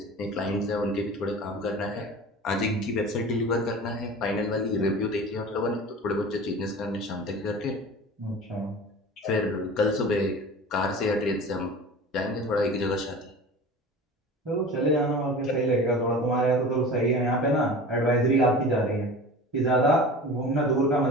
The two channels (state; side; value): normal; both; correlation 0.37